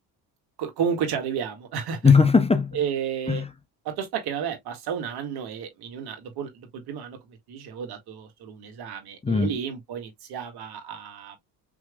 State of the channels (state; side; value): normal; both; correlation 0.55